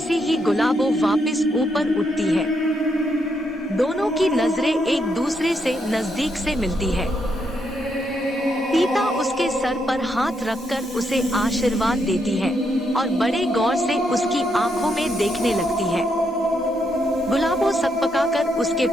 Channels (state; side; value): normal; both; correlation 0.78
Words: ही गुलाबो वापस ऊपर उठती है, दोनों की नजरें एक दूसरे से नजदीक से मिलती है। तीता उसके सर पर हाथ रखकर उसे आशीर्वाद देती है और बड़े गौर से उसकी आंखों में देखने लगती है। गुलाबो सकपकाकर उसके